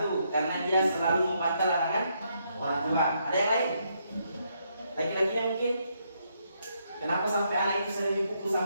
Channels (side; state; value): both; inverted; correlation -0.76